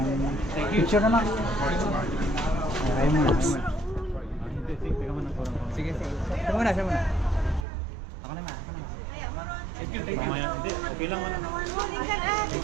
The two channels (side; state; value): left; drops out; at 7.7 s